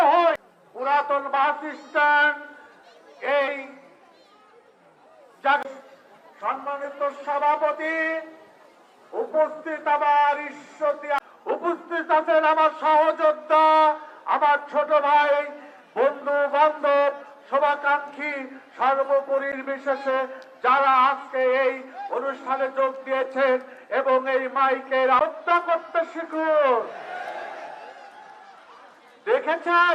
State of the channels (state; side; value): identical; both; correlation 1.00